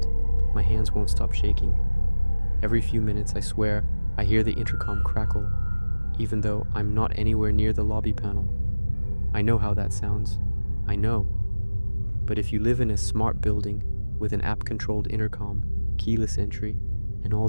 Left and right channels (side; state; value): both; inverted; correlation -1.00